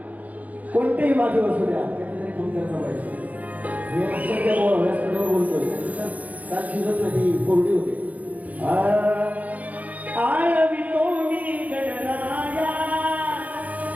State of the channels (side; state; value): left; late; 0.075 ms